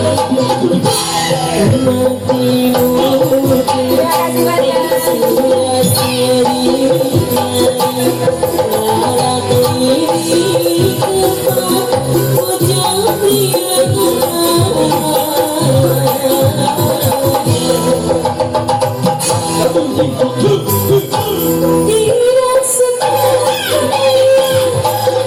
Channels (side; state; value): both; identical; correlation 1.00